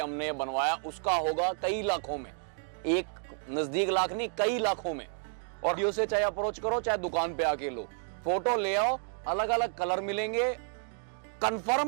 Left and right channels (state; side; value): silent; left; 57 dB below the other